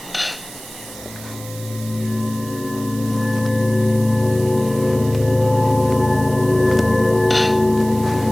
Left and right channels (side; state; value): right; noise; hiss, 16 dB below the sound